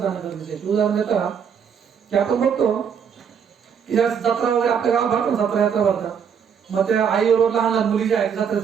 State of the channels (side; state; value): left; quieter; 7.3 dB